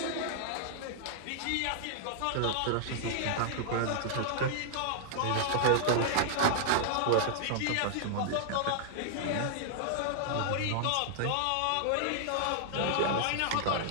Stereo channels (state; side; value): different; both; correlation -0.01